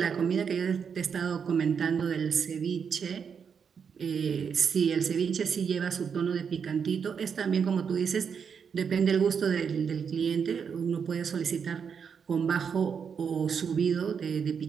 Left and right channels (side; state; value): left; quieter; 6.7 dB